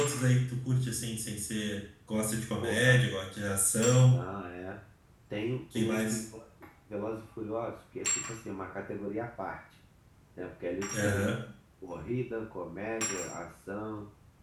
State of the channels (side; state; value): both; identical; correlation 1.00